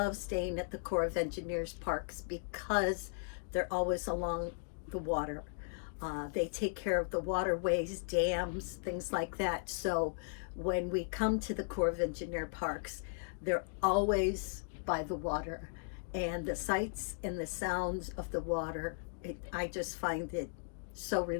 staying at the Corps of Engineers parks because they're always along the water. They take care of the waterways, dams, things like that. So when we come to the Corps of Engineer parks, they're always by the water. And the sights and the sounds of the water, I just find it so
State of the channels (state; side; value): silent; right; digital silence